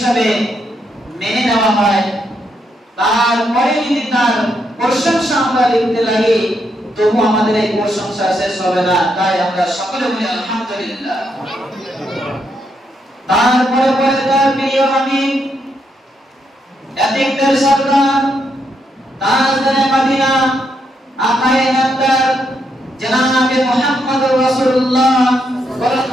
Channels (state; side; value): normal; both; correlation 0.79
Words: মেনে নেওয়া হয়, তারপরে যদি তার প্রশংসা আমরা লিখতে লাগি, তবু আমাদের এই প্রশংসা শেষ হবে না। তাই আমরা সকলে বলি আলহামদুলিল্লাহ। তারপরে পরে তার প্রিয় হাবিব, এতিকদের সরদার, তাজদারে মদিনা, আকায়ে নামদার জনাবে মুহাম্মদুর রাসূলুল্লাহ